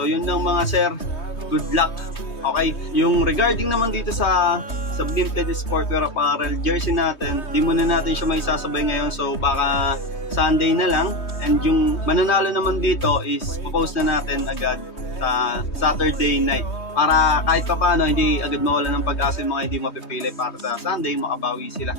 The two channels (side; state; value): right; late; 3.2 ms